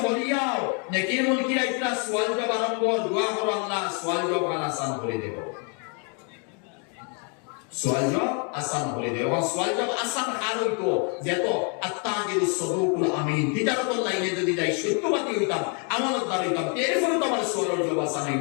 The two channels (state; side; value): quieter; right; 37.8 dB